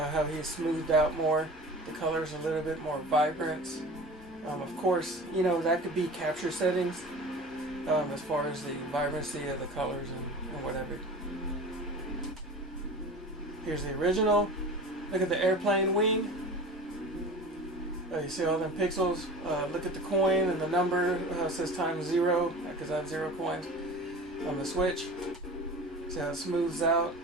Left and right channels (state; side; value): normal; both; correlation 0.37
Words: he's smoothed out more. The color's a little bit more vibrant. Of course, you know, that could be capture settings as far as the vibrancy of the colors and whatever. Here's the original. Look at the airplane wing. You see all them pixels. Look at the coin and the number. It says times 0 because I have 0 coins on the Switch. See how it smooths out.